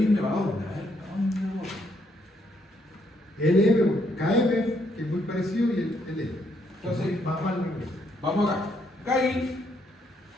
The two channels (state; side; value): normal; both; correlation 0.73